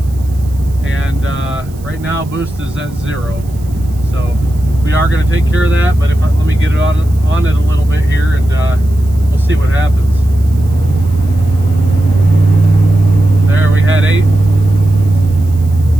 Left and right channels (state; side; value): noise; right; hiss, 25 dB below the sound